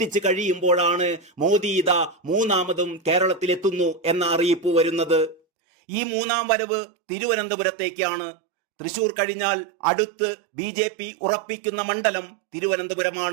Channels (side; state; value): left; drops out; at 5.4 s